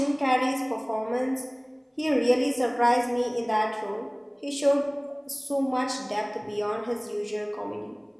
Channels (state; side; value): identical; both; correlation 1.00